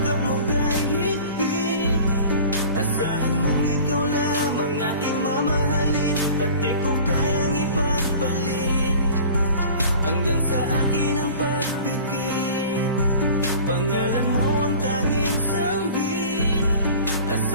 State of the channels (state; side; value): inverted; both; correlation -0.42